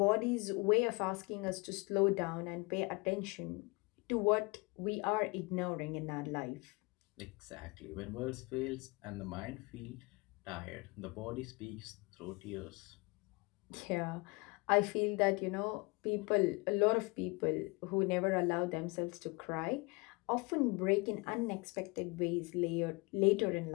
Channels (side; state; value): right; quieter; 27.3 dB